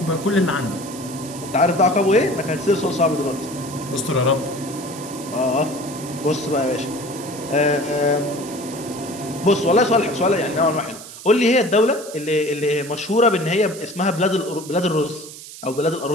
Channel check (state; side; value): noise; right; hiss, 14 dB below the sound